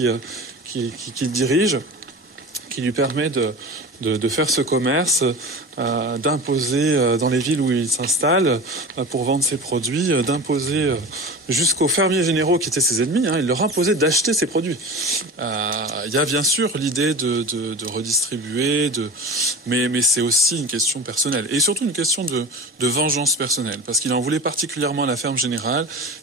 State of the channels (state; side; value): normal; both; correlation 0.32